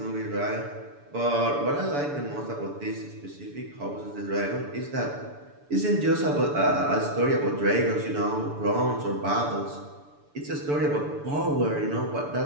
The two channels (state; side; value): late; left; 6.9 ms